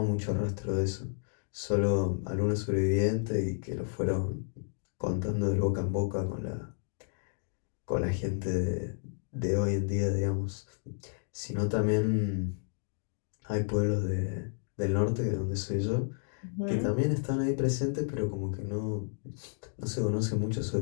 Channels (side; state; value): right; silent; digital silence